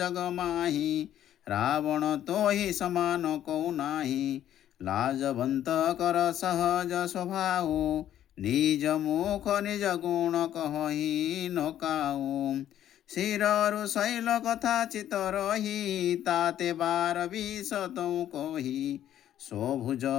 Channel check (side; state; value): right; quieter; 11.4 dB